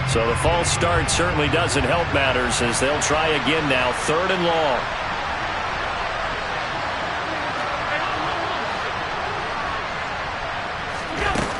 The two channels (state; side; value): identical; both; correlation 1.00